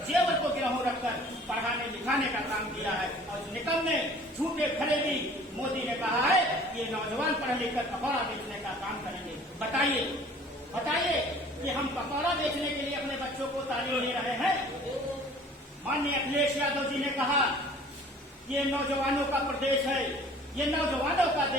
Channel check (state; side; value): normal; both; correlation 0.49